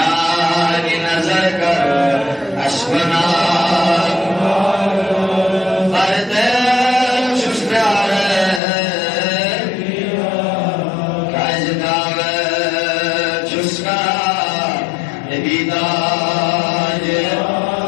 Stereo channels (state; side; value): drops out; right; at 8.6 s